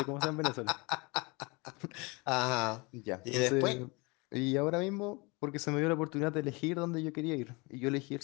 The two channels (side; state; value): right; quieter; 27.3 dB